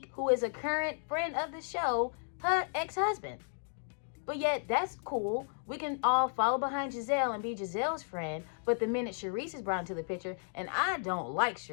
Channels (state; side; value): silent; right; digital silence